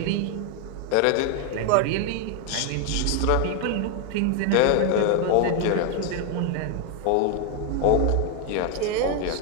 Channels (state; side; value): different; both; correlation 0.01